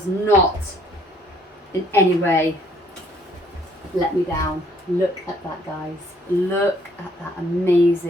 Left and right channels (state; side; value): normal; both; correlation 0.63